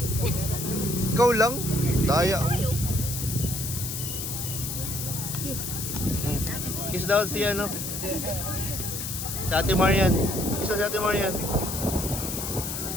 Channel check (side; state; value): left; noise; hiss, 5 dB below the sound